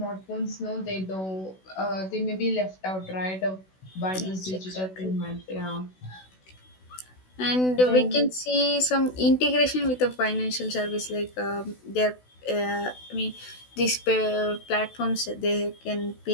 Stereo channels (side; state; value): right; late; 16 ms